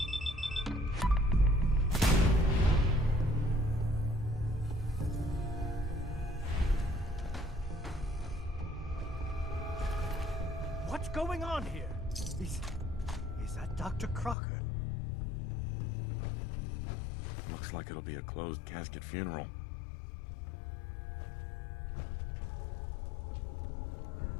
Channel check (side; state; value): right; drops out; at 14.4 s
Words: What's going on here? Is that Dr. Crocker? Looks like it'll be a closed casket funeral.